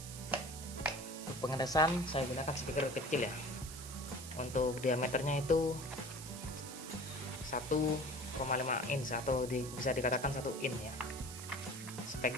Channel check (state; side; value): noise; right; hiss, 11 dB below the sound